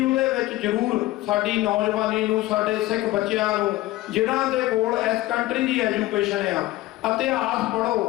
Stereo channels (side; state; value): right; quieter; 17.3 dB